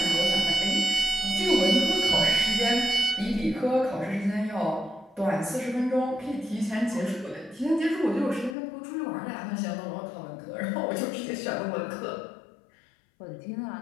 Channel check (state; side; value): drops out; right; at 8.6 s